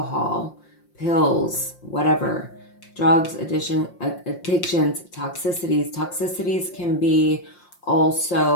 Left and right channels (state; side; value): late; right; 5.7 ms